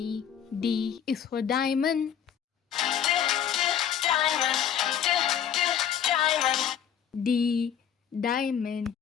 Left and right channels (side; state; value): right; quieter; 8.9 dB